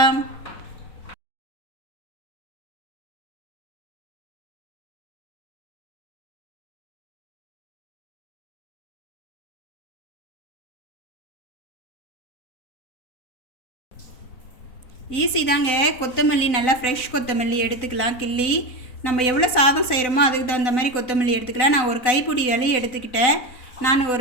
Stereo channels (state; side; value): late; right; 4.0 ms